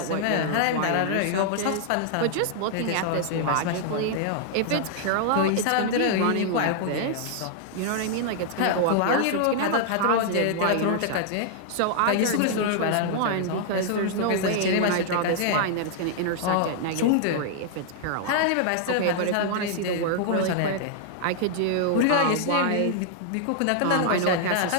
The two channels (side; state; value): both; different; correlation -0.01